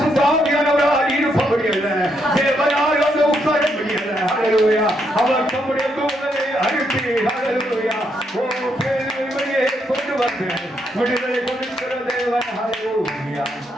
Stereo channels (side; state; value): both; normal; correlation 0.77